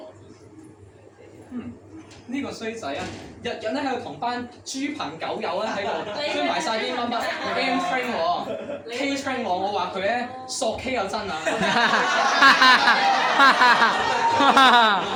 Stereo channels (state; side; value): identical; both; correlation 1.00